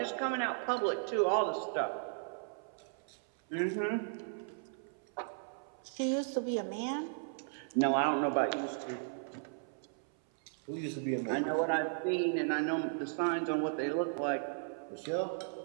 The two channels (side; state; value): left; silent; 54 dB below the other